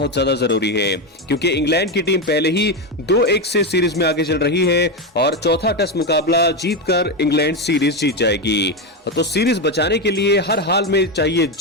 ज्यादा जरूरी है, क्योंकि इंग्लैंड की टीम पहले ही 2-1 से सीरीज में आगे चल रही है और चौथा टेस्ट मुकाबला जीतकर इंग्लैंड सीरीज जीत जाएगी। तो सीरीज बचाने के लिए हर हाल में चाहिए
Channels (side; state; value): both; normal; correlation 0.11